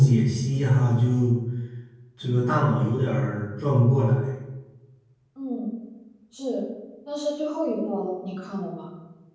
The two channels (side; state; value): both; identical; correlation 1.00